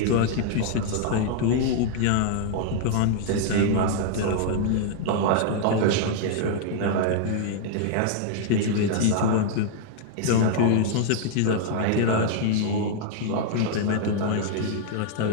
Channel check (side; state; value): both; different; correlation -0.01